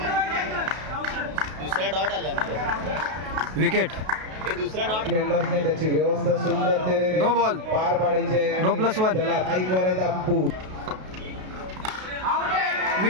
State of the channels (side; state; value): left; late; 32 ms